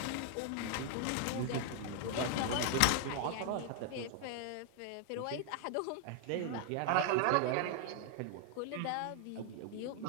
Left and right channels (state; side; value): different; both; correlation 0.00